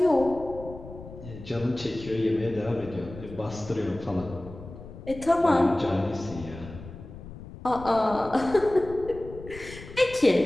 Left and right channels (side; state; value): left; noise; rumble, 14 dB below the sound